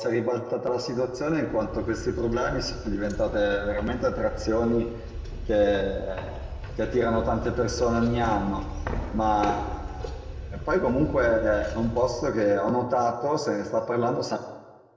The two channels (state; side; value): identical; both; correlation 1.00